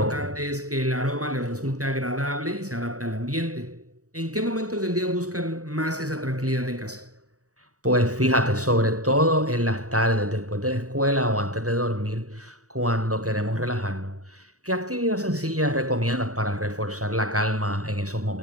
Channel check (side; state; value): left; late; 0.66 ms